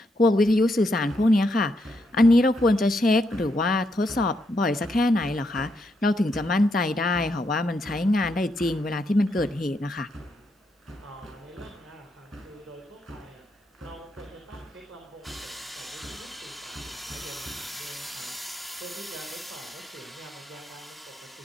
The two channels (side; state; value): both; normal; correlation 0.79